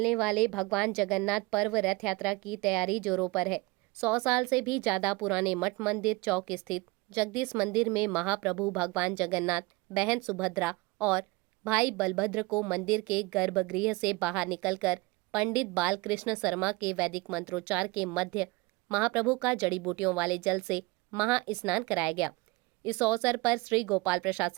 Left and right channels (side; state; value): left; quieter; 23.6 dB